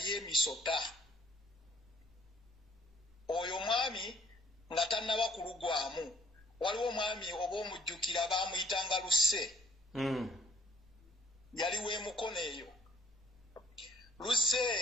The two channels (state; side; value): normal; both; correlation 0.60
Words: emisota oyo mwami nga tannaba kulugwamu waliwo omwami oba omujjukira baamuyitanga Lusse yaliwo emukono eyo Lusse